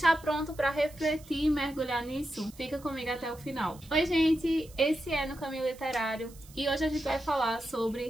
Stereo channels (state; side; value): noise; right; hiss, 22 dB below the sound